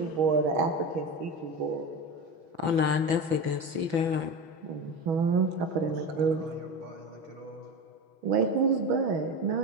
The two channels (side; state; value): left; late; 5.9 ms